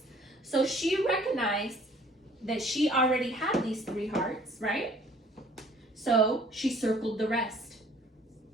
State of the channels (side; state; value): both; normal; correlation 0.56